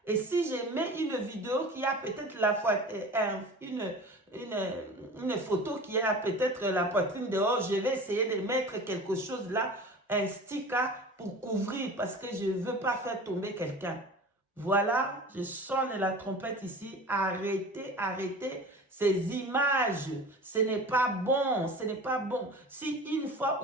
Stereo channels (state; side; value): normal; both; correlation 0.37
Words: Et si je mets une vidéo qui a peut-être la fois une photo qui a peut-être la poitrine dehors, je vais essayer de mettre quelque chose là, un sticker pour couvrir parce que je ne veux pas faire tomber quelqu'un. Voilà, je sonne la trompette ici. Arrêtez, arrêtez ces images. Ce n'est pas bon, ce n'est pas bon. Si une fois